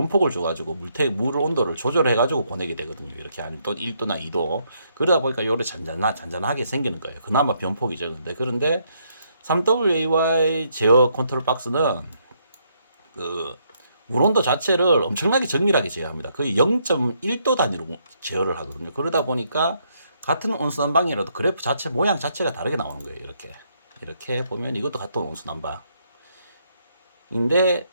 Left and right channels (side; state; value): both; inverted; correlation -0.73